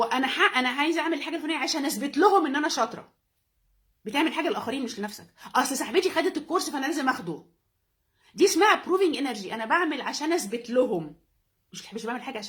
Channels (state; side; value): identical; both; correlation 1.00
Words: انا عايزه اعمل الحاجه الفلانيه عشان اثبت لهم ان انا شاطره، بتعمل حاجه للاخرين مش لنفسك. اصل صاحبتي خدت الكورس فانا لازم اخده، دي اسمها بروفينج انرجي. انا بعمل عشان اثبت لهم، مش بعمل حاجه